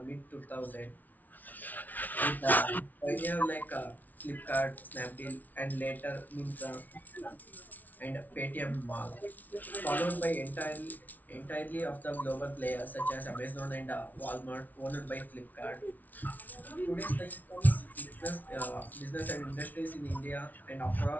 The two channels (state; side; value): late; right; 0.078 ms